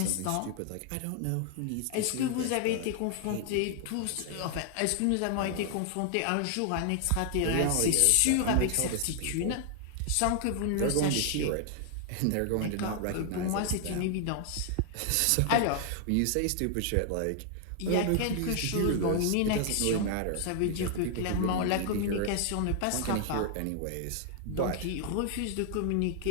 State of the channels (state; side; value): different; both; correlation 0.00